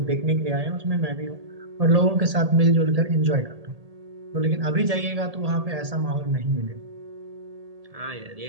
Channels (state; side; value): late; left; 1.8 ms